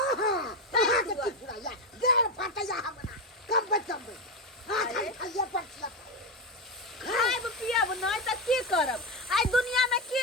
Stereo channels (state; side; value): normal; both; correlation 0.12